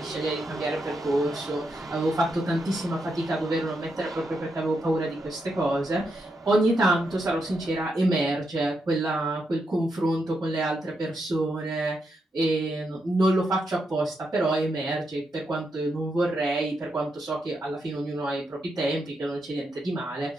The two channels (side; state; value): both; normal; correlation 0.82